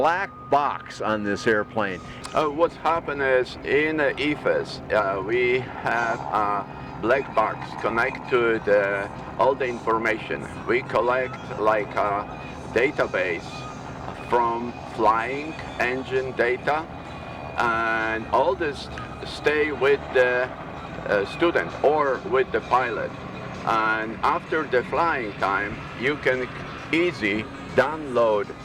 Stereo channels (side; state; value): both; identical; correlation 1.00